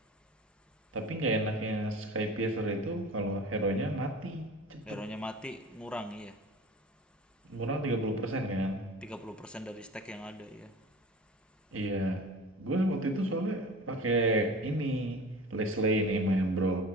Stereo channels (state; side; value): normal; both; correlation 0.39